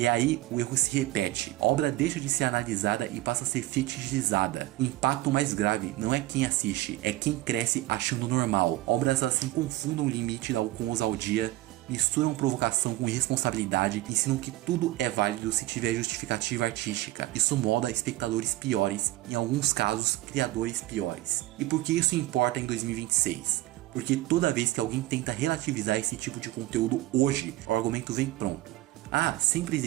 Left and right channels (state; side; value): quieter; left; 17.1 dB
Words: aí o erro se repete. A obra deixa de ser analisada e passa a ser fetichizada. O impacto mais grave não é quem assiste, é quem cresce achando normal. Obras assim confundam o limite com ousadia, misturam provocação com irresponsabilidade, ensinam que tudo é válido se tiver justificativa artística. Isso molda espectadores piores, em alguns casos criadores piores. E por que isso importa em 2026? Porque toda vez que alguém tenta relativizar esse tipo de conteúdo hoje, o argumento vem pronto. Ah, sempre